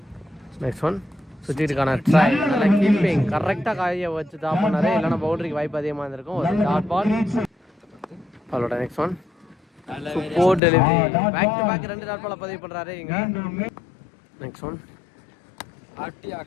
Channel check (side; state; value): right; drops out; at 10.6 s